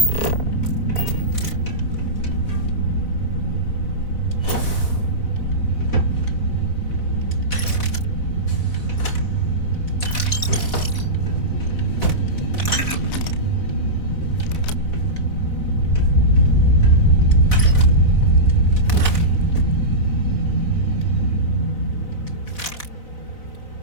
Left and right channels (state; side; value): late; right; 3.9 ms